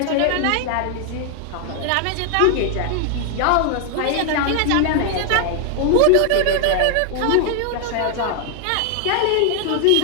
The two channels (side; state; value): both; different; correlation 0.00